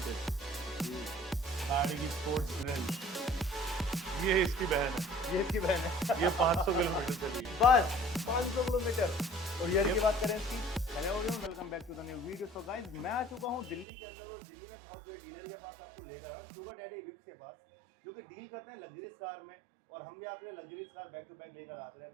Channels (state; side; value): drops out; left; at 13.9 s